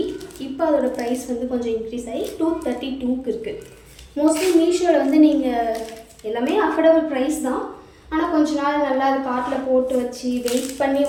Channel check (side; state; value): both; identical; correlation 1.00